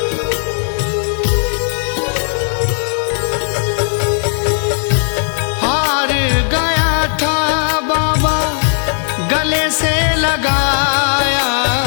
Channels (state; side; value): silent; right; 58 dB below the other